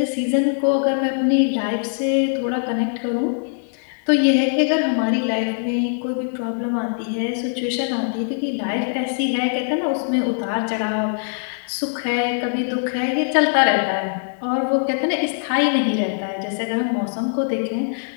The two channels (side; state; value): right; silent; digital silence